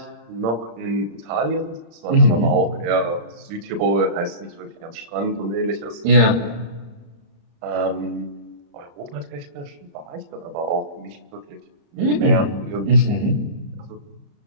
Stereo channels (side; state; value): left; late; 35 ms